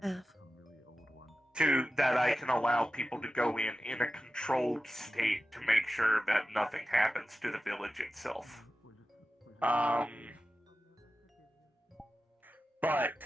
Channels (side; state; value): both; normal; correlation 0.93